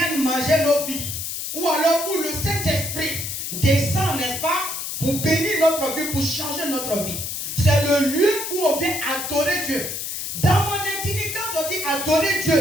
manger nos vies, ou alors où le Saint-Esprit descend, n'est-ce pas, pour bénir notre vie, pour changer notre vie. C'est le lieu où on vient adorer Dieu. Dans mon intimité, quand on dit adorer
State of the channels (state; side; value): noise; left; hiss, 5 dB below the sound